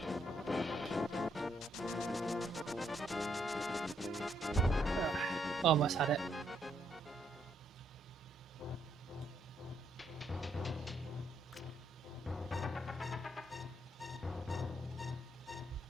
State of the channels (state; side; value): normal; both; correlation 0.74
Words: Almost had it.